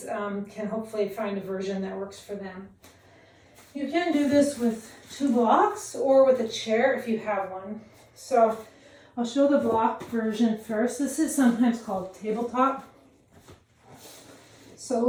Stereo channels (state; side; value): identical; both; correlation 1.00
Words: can hopefully find a version that works for them. You can do this with 2 blocks or with a chair if you have one. So I'll show the block version first. This is sometimes called tabletop. So